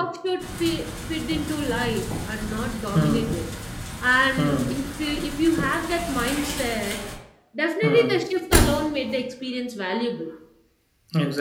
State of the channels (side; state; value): both; identical; correlation 1.00